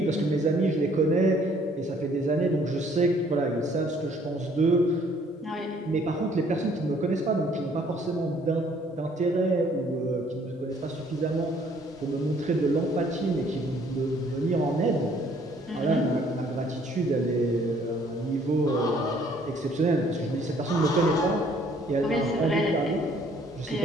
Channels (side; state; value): both; normal; correlation 0.61